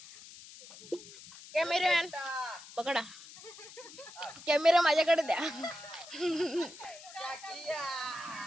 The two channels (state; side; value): noise; left; hiss, 17 dB below the sound